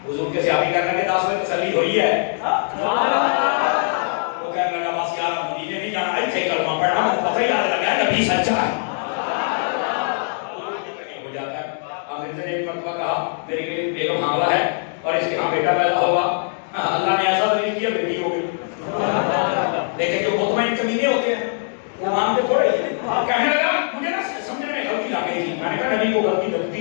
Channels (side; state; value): right; silent; digital silence